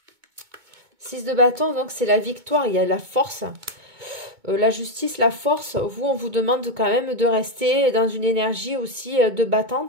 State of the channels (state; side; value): late; left; 2.2 ms